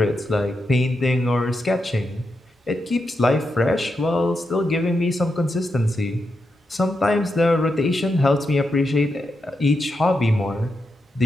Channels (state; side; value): normal; both; correlation 0.86